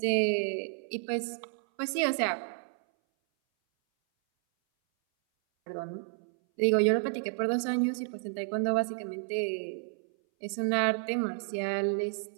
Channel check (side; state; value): left; silent; 57 dB below the other